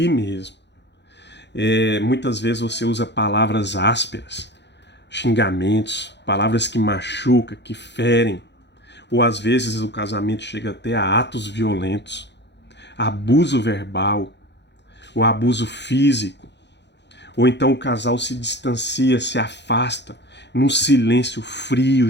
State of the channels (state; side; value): late; right; 0.50 ms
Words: mesmo. Muitas vezes você usa palavras ásperas, xingamentos, palavras que machucam, que ferem, ou às vezes o casamento chega até a atos violentos, abuso verbal, o abuso físico, ou então o casal se distancia, se afasta, num silêncio frio,